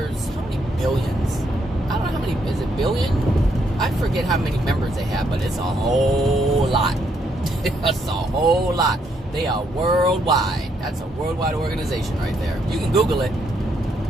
how many billions? I don't know how many, is it billion? I forget how many members they have, but it's a whole lot. It's a whole lot. They are worldwide. That's a worldwide organization right there. You can Google it.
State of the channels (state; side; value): normal; both; correlation 0.74